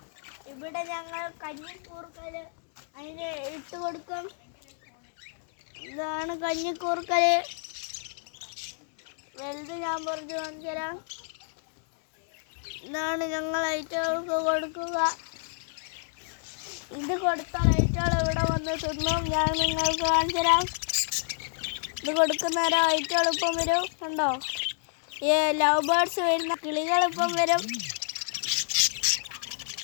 ഇവിടെ ഞങ്ങൾ കഞ്ഞിക്കൂർക്കൽ അതിന് ഇട്ട് കൊടുക്കും. ഇതാണ് കഞ്ഞിക്കൂർക്കൽ. വലുത് ഞാൻ പുറത്ത് കാണിച്ചു തരാം. ഇതാണ് ഞങ്ങൾ ഐറ്റങ്ങൾക്ക് കൊടുക്കുക. ഇത് കൊടുത്താൽ ഐറ്റകൾ ഇവിടെ വന്ന് തിന്നും. ഞാൻ നിങ്ങൾക്ക് കാണിച്ചു തരാം. ഇത് കൊടുക്കുന്നേരം ഐറ്റകൾ ഇപ്പം വരും. കണ്ടോ, ഈ ലവ് ബേർഡ്സ് വരുന്ന കിളികളിപ്പം വരും.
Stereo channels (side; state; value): right; silent; digital silence